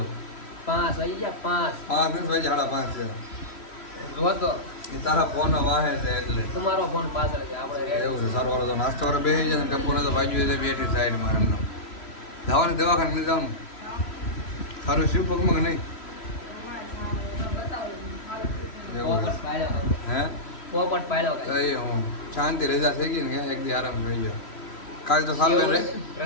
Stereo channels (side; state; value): right; late; 3.1 ms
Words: 5 વાગી ગયા. 5 વાગ્યા 5:30 છે. જો તો એ તારા ફોન વાહે છે એટલે તમારો ફોન પાછળ છે. આપણે એવું છે. સારું વાળો તો નાસ્તો કરવા બેસી જાય ને, ટપ્પુને તો વાગ્યું છે બેઠી સાઈડમાં એમને. જવાનું દવાખાને લઈ જવાનું. સારું શિવ પગમાં કે નહીં? હે પોપટ પાડ્યો કઈ હું શાંતિ રજા થઈ ગઈ ને, એક દી આરામ થઈ ગયો. કાલ તો સારું રે